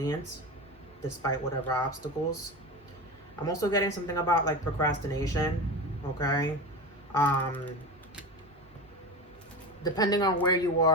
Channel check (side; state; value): both; normal; correlation 0.25